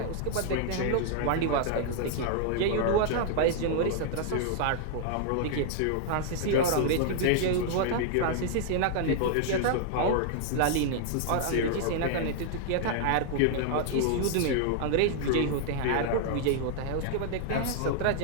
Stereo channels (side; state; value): both; different; correlation -0.01